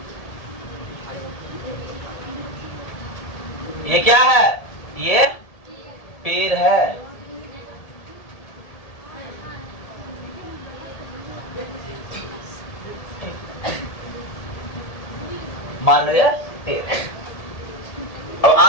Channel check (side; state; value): right; late; 1.8 ms